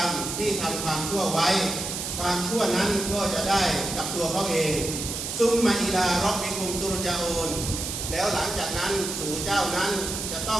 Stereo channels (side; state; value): right; noise; hiss, 5 dB below the sound